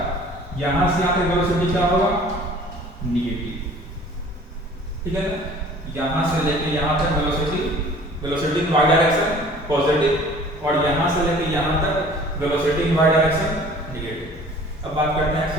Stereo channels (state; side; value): normal; both; correlation 0.49